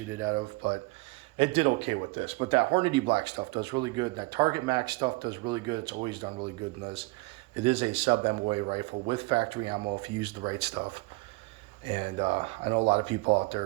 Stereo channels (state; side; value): quieter; left; 24.1 dB